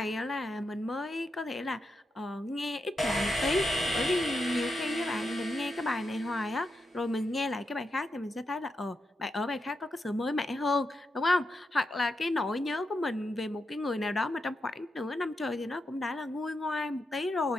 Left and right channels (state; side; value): normal; both; correlation 0.86